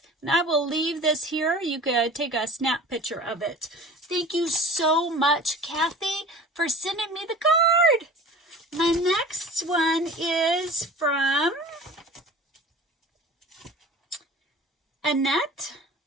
And I will leave this here. You could take a snap picture of it. Thank you so much, Kathy, for sending me the card. My next one is from Annette.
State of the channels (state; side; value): normal; both; correlation 0.40